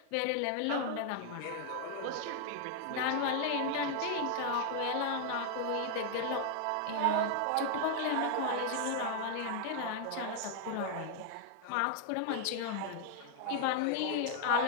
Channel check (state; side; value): different; both; correlation 0.00